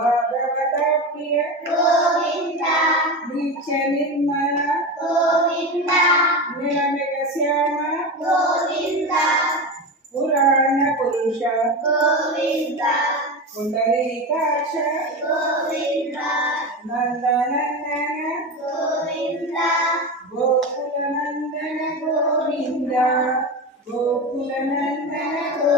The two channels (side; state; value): both; normal; correlation 0.22